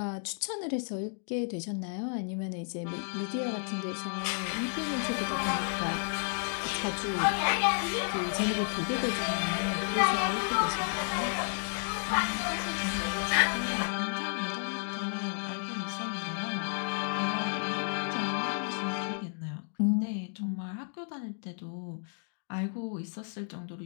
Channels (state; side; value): silent; right; 56 dB below the other